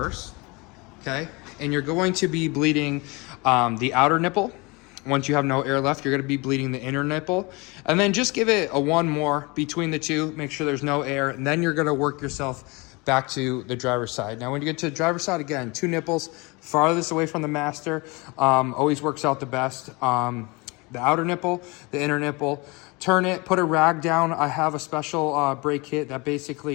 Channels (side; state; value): right; quieter; 26.5 dB